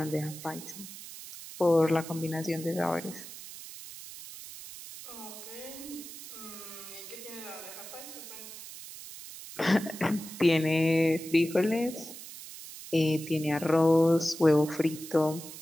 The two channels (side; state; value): right; noise; hiss, 13 dB below the sound